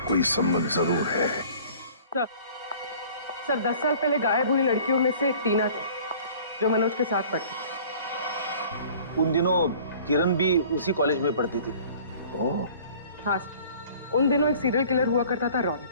कोई संबंध जरूर है। सर 10 साल पहले गायब हुई लड़कियों में से एक टीना थी जो मनोज के साथ पढ़ती थी। उन दिनों किरण भी उसी कॉलेज में पढ़ती थी। हाँ सर, उन दिनों एक सीरियल किलर हुआ करता था रॉनी,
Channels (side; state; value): both; inverted; correlation -0.49